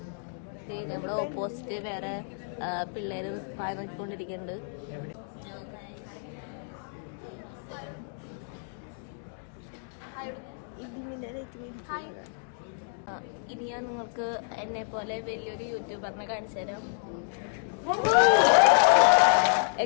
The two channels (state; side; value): silent; right; digital silence